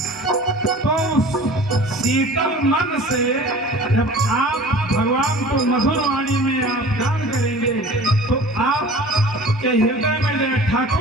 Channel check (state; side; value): normal; both; correlation 0.43